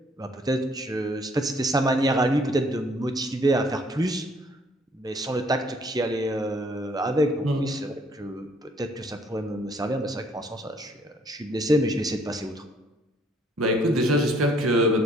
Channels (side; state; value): both; normal; correlation 0.62